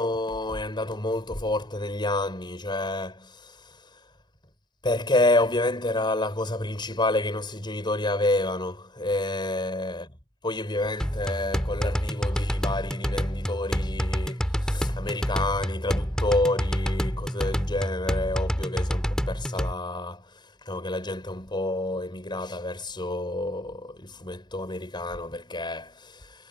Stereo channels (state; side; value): normal; both; correlation 0.64